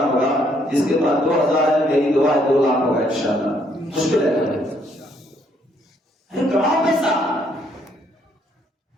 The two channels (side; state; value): both; normal; correlation 0.69